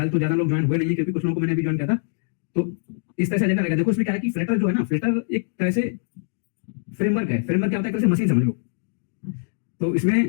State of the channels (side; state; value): right; silent; digital silence